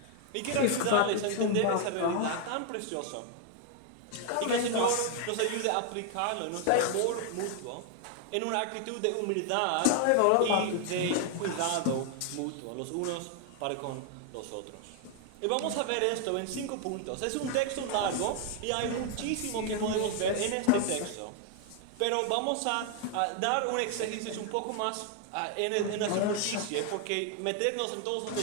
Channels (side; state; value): both; different; correlation 0.00